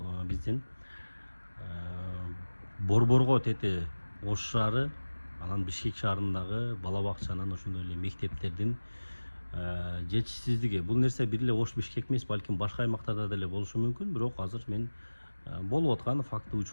биздин Борборго тети Ош шаары, анан Бишкек шаарындагы бала бакчанын, ошондой эле мектептердин жетишсиздиги. Бул нерсе бир эле Ош Бишкек эмес, балким башка аймактарда деле болушу мүмкүн, бирок азыр мен болуп аткан факты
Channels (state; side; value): inverted; both; correlation -1.00